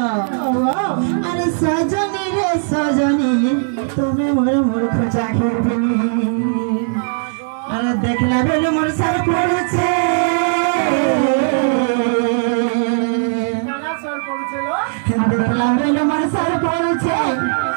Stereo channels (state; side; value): silent; left; digital silence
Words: अरे सजनी रे सजनी तुम्हें मोर मूर्ख चाखिर पिनी अरे देखला बेले मोर सर पड़छे देखला बेले मोर सर पड़छे